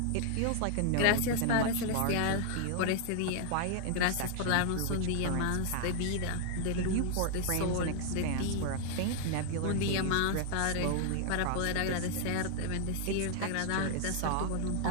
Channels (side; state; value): both; different; correlation 0.00